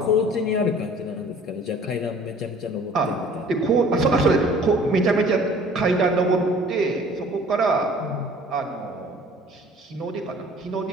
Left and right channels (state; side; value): normal; both; correlation 0.51